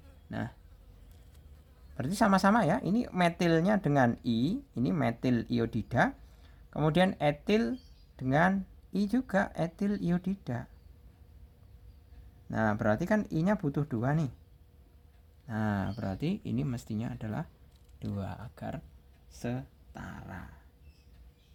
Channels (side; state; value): both; identical; correlation 1.00